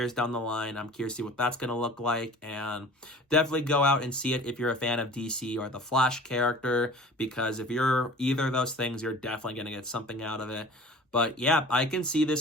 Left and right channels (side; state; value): both; normal; correlation 0.43